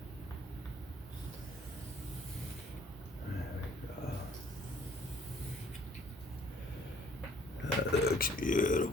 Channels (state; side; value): normal; both; correlation 0.58